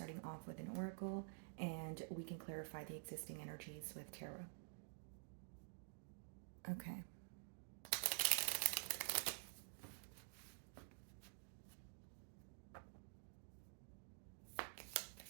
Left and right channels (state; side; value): silent; left; digital silence